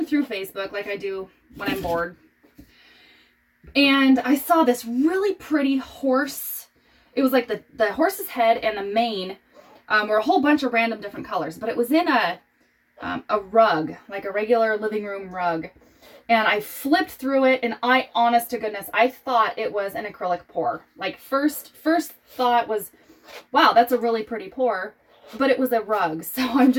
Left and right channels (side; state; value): both; identical; correlation 1.00